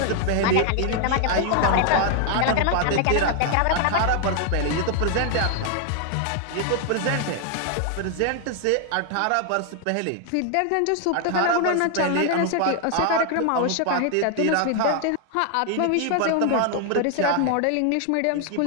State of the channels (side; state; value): both; different; correlation 0.00